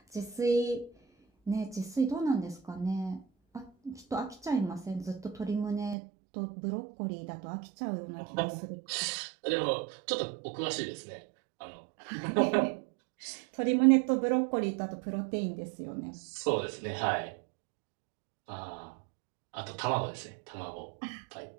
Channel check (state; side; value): drops out; left; at 6.0 s